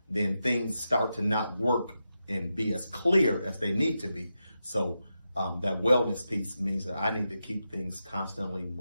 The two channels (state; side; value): inverted; both; correlation -0.88